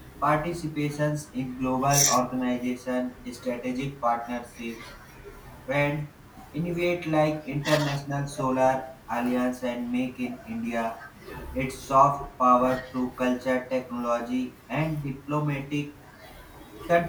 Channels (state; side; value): identical; both; correlation 1.00